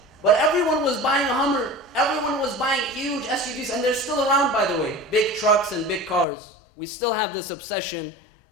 But everyone was buying a Hummer. Everyone was buying huge SUVs, and they're still around, by the way. Big trucks and big cars. We still have this obsession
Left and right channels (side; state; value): right; drops out; at 6.2 s